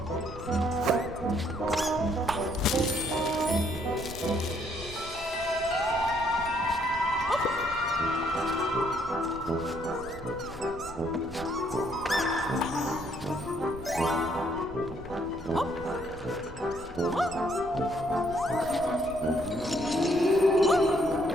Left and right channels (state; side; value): noise; left; rumble, 16 dB below the sound